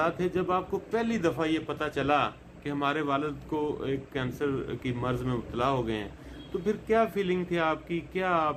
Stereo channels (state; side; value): identical; both; correlation 1.00